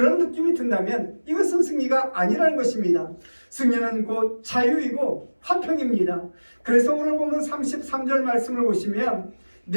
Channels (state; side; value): inverted; both; correlation -1.00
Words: 느낌이 든다면 이것은 승리가 아니라는 것입니다. 승리는 곧 자유이고 화평입니다. 그래서 오늘 보면 33절 말씀을 보시면